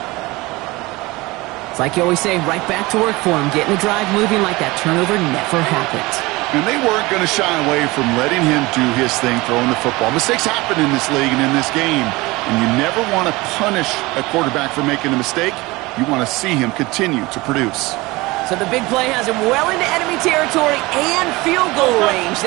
It's like you always say, right back to work for him. Getting the drive moving like that turnover never happened. And they weren't going to shy away from letting him do his thing, throwing the football. Mistakes happen in this league and in this game. And you never want to punish a quarterback for making a mistake. You want to see him continue to produce. So the big play has him well into enemy territory and field goal range.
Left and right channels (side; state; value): left; quieter; 21.9 dB